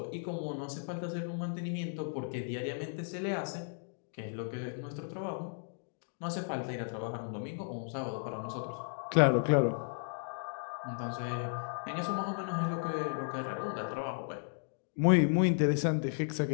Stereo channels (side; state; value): right; silent; digital silence